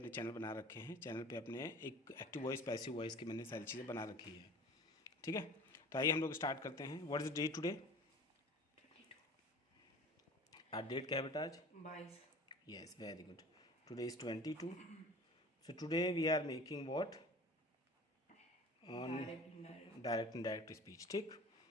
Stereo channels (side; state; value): both; normal; correlation 0.42